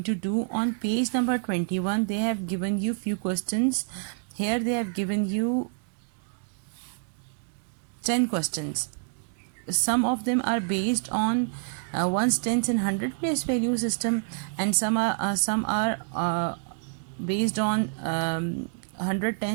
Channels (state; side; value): silent; left; 60 dB below the other